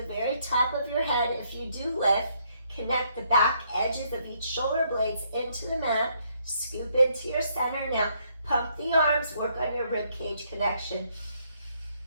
very top of your head. If you do lift, connect the back edges of each shoulder blades into the mat. Scoop into your center. Now, pump the arms, work on your rib cage connection.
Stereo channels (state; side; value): inverted; both; correlation -0.71